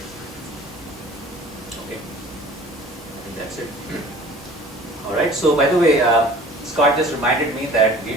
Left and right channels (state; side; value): normal; both; correlation 0.47